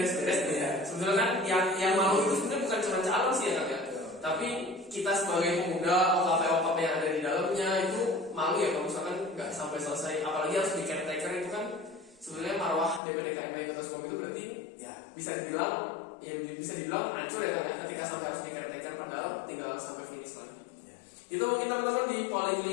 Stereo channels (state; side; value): drops out; right; at 13.0 s